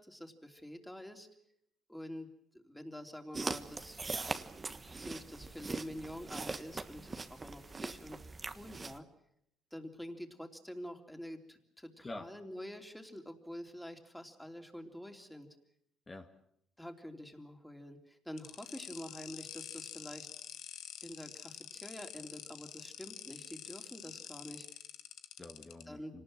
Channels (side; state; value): both; normal; correlation 0.87